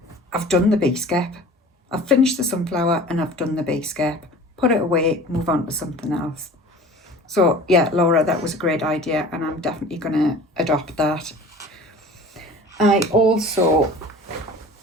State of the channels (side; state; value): both; normal; correlation 0.42